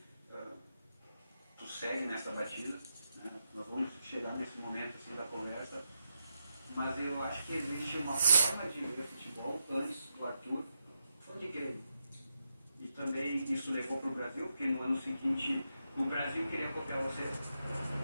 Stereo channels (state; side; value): inverted; both; correlation -0.85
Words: tu segue nessa batida. Né? Nós vamos chegar nesse momento assim da conversa. Mas eu acho que existe uma forma de ver futebol antes do Arthur, foi de Grêmio. E também também isso levou para o Brasil, porque no ano seguinte o Brasil queria copiar você.